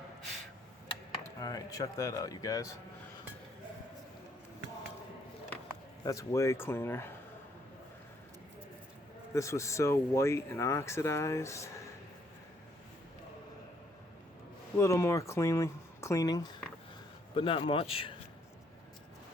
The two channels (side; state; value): both; normal; correlation 0.69